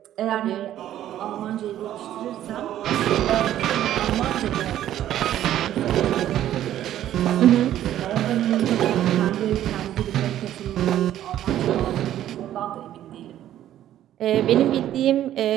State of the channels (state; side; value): quieter; left; 12.1 dB